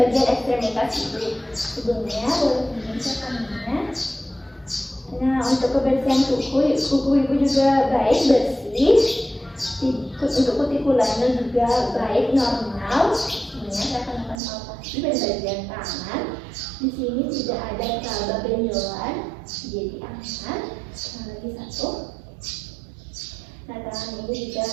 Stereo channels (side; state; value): left; drops out; at 14.4 s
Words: ekstremitas dulu. Sebelumnya boleh diperiksa tangannya. Nah, untuk kebersihan kuku ibu juga baik, bersih. Untuk kutikulanya juga baik, normal. Saya akan melakukan palpasi pada bagian tangan. Di sini tidak ada laba benjolan, jadi aman. Nah, lagi satu. Nah, tangan ini juga